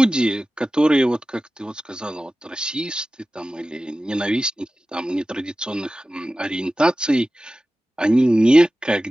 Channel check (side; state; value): both; normal; correlation 0.95